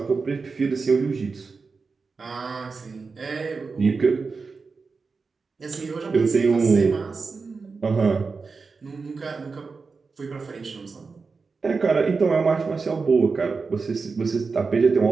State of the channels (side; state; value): left; quieter; 4.6 dB